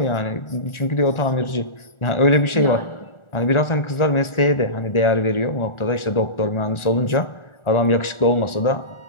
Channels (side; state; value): right; late; 1.4 ms